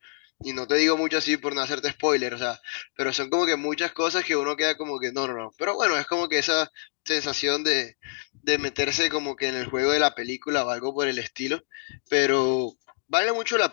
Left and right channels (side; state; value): right; silent; digital silence